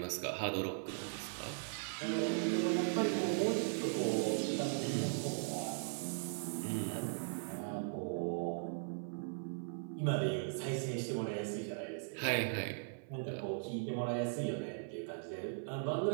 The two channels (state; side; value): silent; left; 52 dB below the other